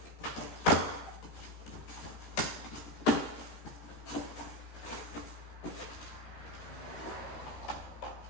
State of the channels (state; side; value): late; right; 13 ms